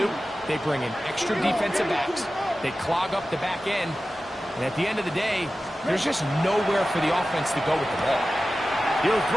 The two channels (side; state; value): both; normal; correlation 0.95